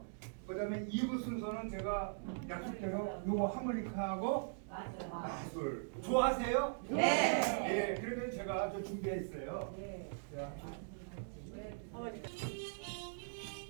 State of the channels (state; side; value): silent; left; digital silence